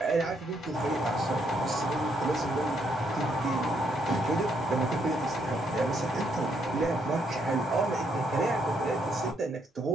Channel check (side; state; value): both; normal; correlation 0.74